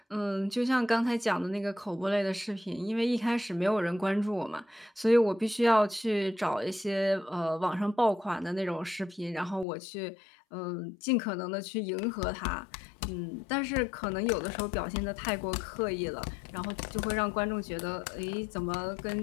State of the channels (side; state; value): right; drops out; at 9.7 s